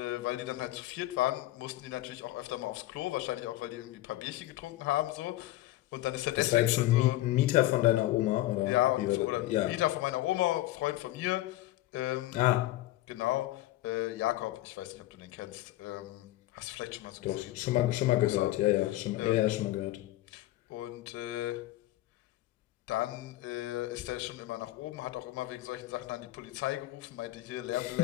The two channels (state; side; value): quieter; right; 16.1 dB